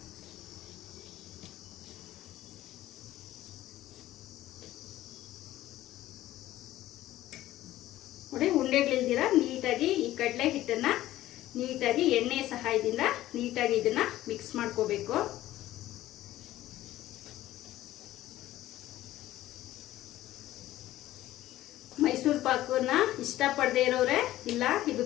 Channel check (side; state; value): right; quieter; 14.8 dB